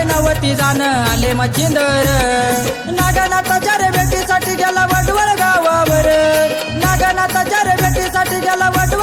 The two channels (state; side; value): identical; both; correlation 1.00